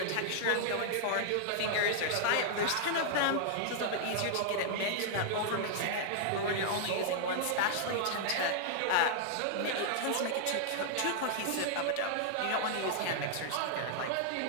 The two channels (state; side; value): different; both; correlation -0.01